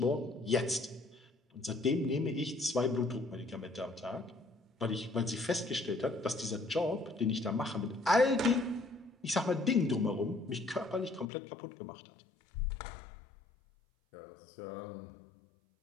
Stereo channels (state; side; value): drops out; right; at 11.2 s